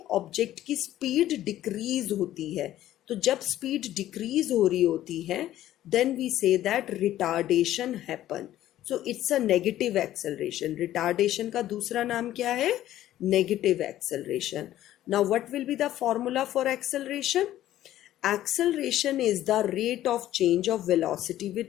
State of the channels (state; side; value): quieter; right; 13.3 dB